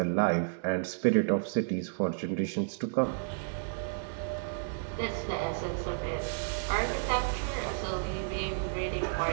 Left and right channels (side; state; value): left; silent; digital silence